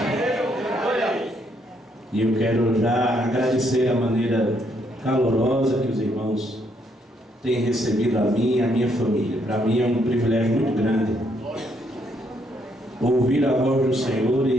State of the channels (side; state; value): both; normal; correlation 0.73